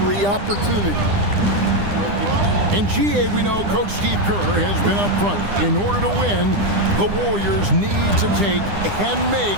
opportunity. In GA, we know Coach Steve Kerr has been up front. In order to win, the Warriors need to take and make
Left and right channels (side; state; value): left; late; 9.9 ms